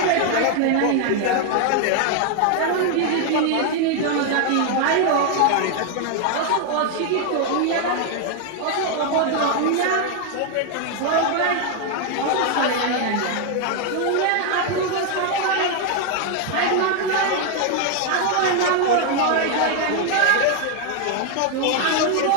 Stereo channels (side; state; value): both; different; correlation 0.00